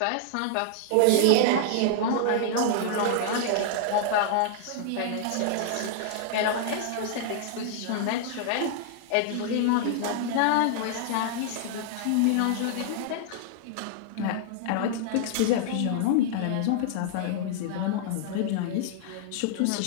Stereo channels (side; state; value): both; different; correlation -0.01